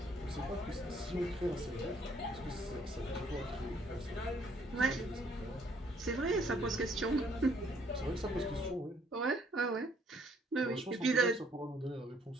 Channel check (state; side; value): normal; both; correlation 0.65